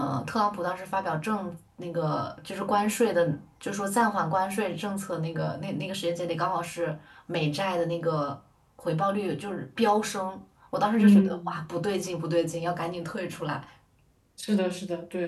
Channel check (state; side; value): identical; both; correlation 1.00